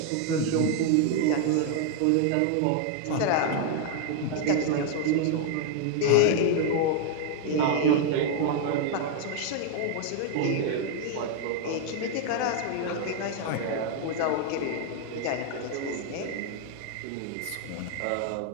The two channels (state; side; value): different; both; correlation 0.00